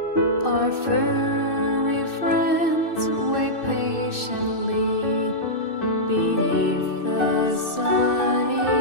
Our furry friends wait patiently beneath the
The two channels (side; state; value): right; late; 2.6 ms